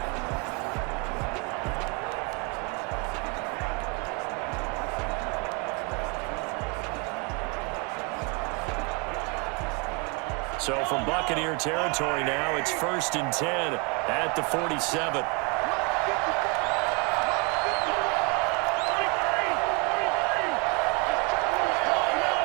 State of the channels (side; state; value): left; quieter; 30.6 dB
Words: So from Buccaneer territory now, it's 1st and 10 at the 47.